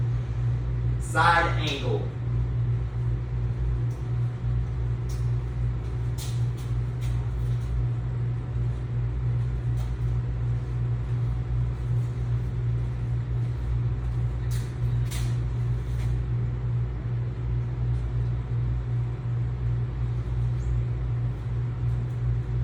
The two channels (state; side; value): identical; both; correlation 1.00